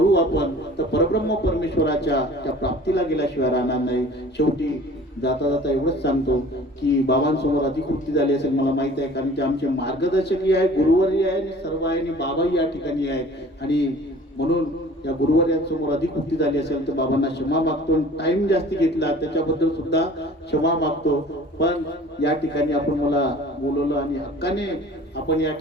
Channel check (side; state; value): both; normal; correlation 0.47